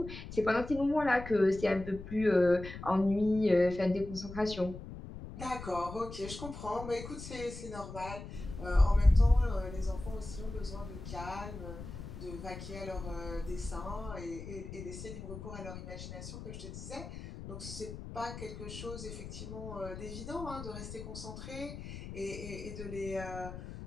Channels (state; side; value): noise; left; rumble, 10 dB below the sound